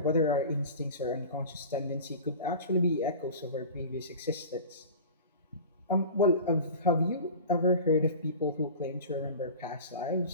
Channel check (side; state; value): both; inverted; correlation -0.36